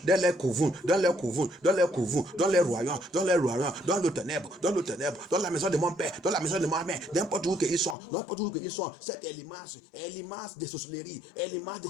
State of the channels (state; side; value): drops out; right; at 8.0 s